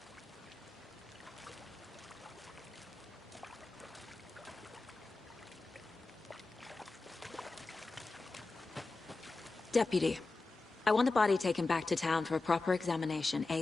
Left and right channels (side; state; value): right; quieter; 3.6 dB